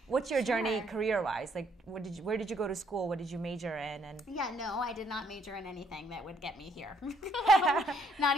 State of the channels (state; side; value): normal; both; correlation 0.68